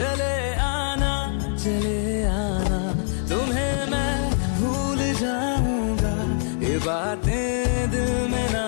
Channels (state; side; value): silent; right; digital silence